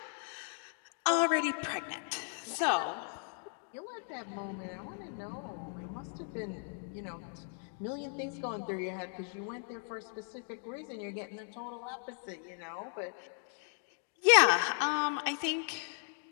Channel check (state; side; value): silent; right; 53 dB below the other